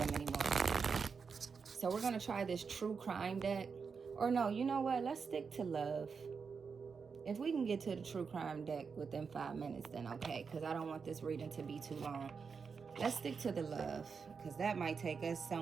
anymore. So we're going to try this true crime deck. Or no, you know what? Let's stick to love. If we can get to the true crime deck within 5 minutes, then okay, because I don't want this reading to be too long. Let's stick to the love, because that might take us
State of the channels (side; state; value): left; quieter; 5.6 dB